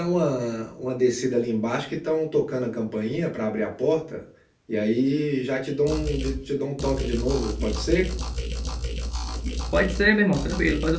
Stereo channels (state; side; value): identical; both; correlation 1.00